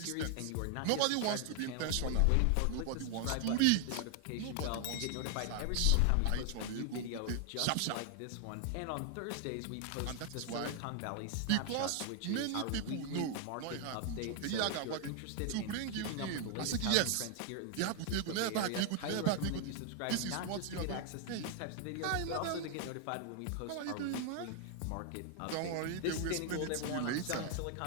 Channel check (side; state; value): both; different; correlation 0.00